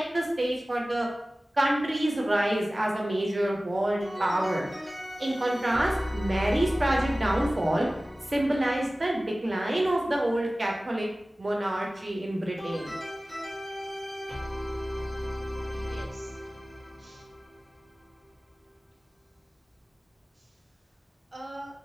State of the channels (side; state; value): both; normal; correlation 0.97